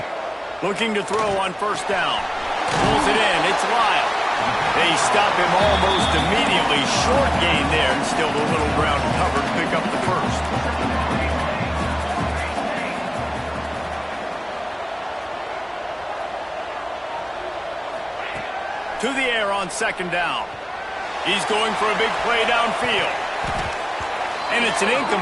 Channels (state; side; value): identical; both; correlation 1.00